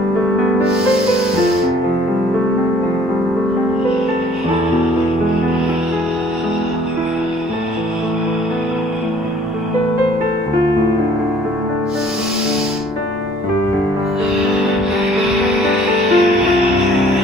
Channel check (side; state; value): both; normal; correlation 0.56